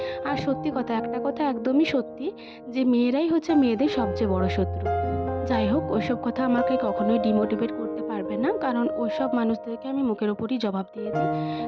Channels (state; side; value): identical; both; correlation 1.00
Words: আর সত্যি কথা, একটা কথা একদমই সত্যি, যে মেয়েরাই হচ্ছে মেয়েদের সবচেয়ে বড় শত্রু। যাই হোক, ওইসব কথা আমাকে কখনোই ডিমোটিভেট করতে পারবে না, কারণ ওইসব মানুষদেরকে আমি মুখের ওপরই জবাব দিয়ে দিই।